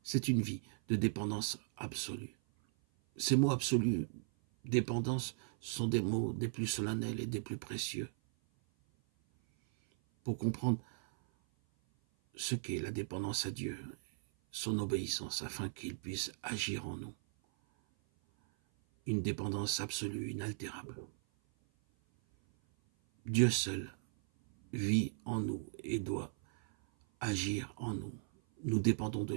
C'est une vie de dépendance absolue. Ces mots absolus, dépendance, sont des mots des plus solennels et des plus précieux. Pour comprendre ce qu'est la dépendance à Dieu, son obéissance, afin qu'il puisse agir en nous. Une dépendance absolue, inaltérable. Dieu seul vit en nous et doit agir en nous. Nous dépendons de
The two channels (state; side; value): silent; left; 53 dB below the other